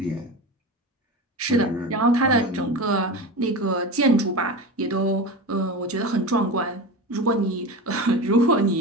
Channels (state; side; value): normal; both; correlation 0.26